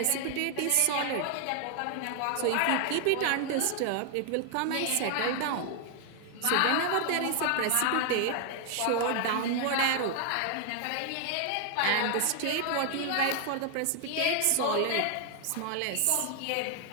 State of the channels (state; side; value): different; both; correlation 0.00